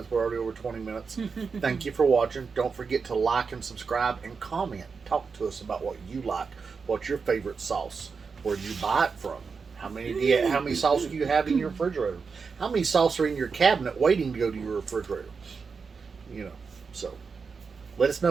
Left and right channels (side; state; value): left; quieter; 5.2 dB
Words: We're already over 20 minutes. Thank you for watching. Don't forget to like and subscribe and comment. Talk to us about what you like. What's your favorite sauce? Where you buy it from? How many sauce do you have in your refrigerator? How many sauce are in your cabinet waiting to go to your refrigerator? You know, so let us